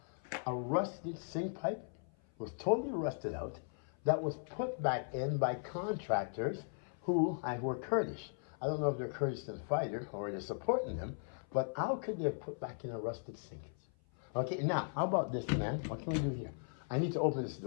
a rusted sink pipe. Was totally rusted out. That was put back in by contractors who were Kurdish. I don't know if they're Kurdish to the fighter or they're supporting them, but how could they have put back in a rusted sink? Okay, now, how about this, man? What can we do here? I need to open this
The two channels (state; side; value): silent; right; 53 dB below the other